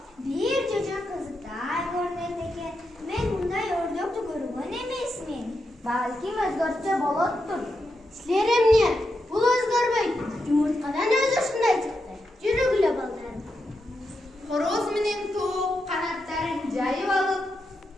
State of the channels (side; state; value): both; normal; correlation 0.85